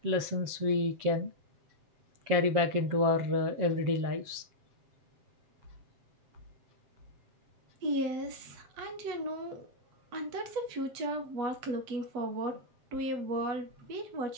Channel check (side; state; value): left; late; 7.3 ms